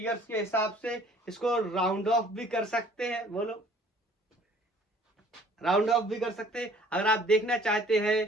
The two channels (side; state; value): both; normal; correlation 0.55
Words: के हिसाब से इसको राउंड ऑफ भी कर सकते हैं, बोलो राउंड ऑफ भी कर सकते हैं। अगर आप देखना चाहते